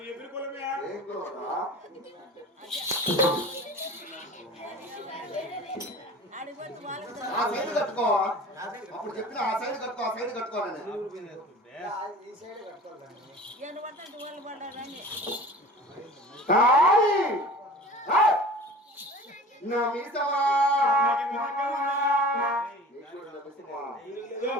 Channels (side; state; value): both; normal; correlation 0.41